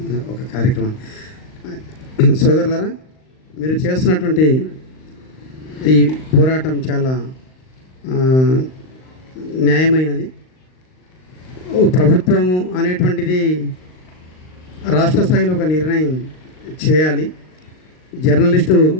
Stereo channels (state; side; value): late; right; 39 ms